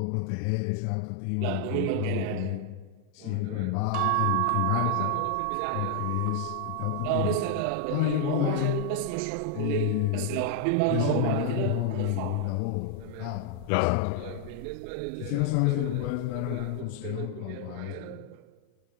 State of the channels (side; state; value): both; different; correlation 0.00